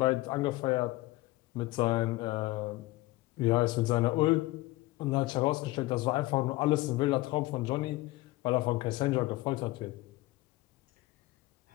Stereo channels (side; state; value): right; quieter; 19.1 dB